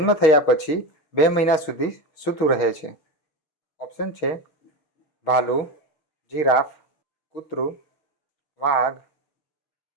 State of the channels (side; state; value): right; late; 6.4 ms